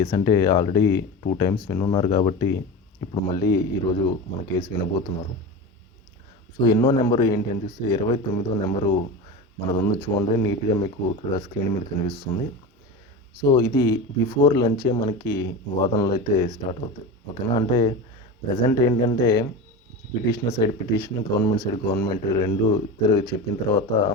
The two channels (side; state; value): both; normal; correlation 0.26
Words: అంటే ఆల్రెడీ 2 టైమ్స్ వినున్నారు కాబట్టి ఇప్పుడు మళ్ళీ ఈరోజు మన కేసు వినబోతున్నారు. సో ఎన్నో నెంబరు ఏంటి అని చూస్తే 29వ నెంబరు మనది చూడండి, నీట్గా మీకు ఇక్కడ స్క్రీన్ మీద కనిపిస్తుంది. సో ఇది బిఫోర్ లంచే మనకి వాదనలు అయితే స్టార్ట్ అవుతాయి. ఓకేనా? అంటే ప్రజెంట్ ఏంటంటే petitioner side petition, government side government ఇద్దరు చెప్పిన తర్వాత